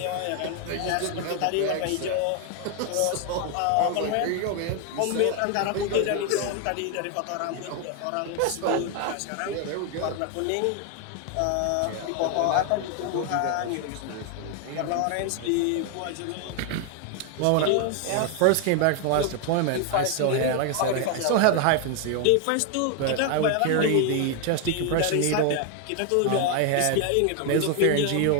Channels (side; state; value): both; different; correlation 0.01